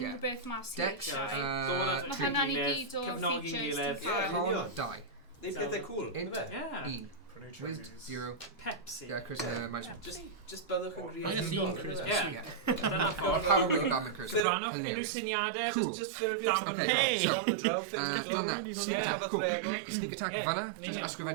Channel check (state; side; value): drops out; left; at 14.4 s